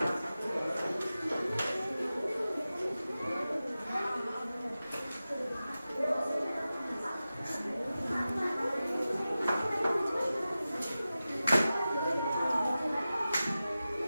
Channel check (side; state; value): both; inverted; correlation -0.95